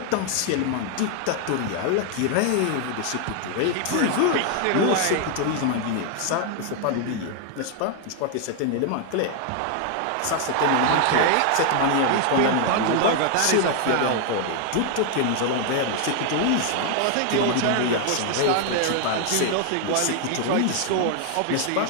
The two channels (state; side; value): different; both; correlation 0.00